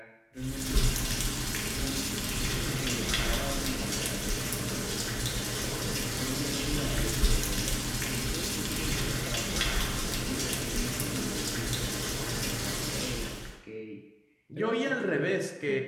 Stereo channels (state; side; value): identical; both; correlation 1.00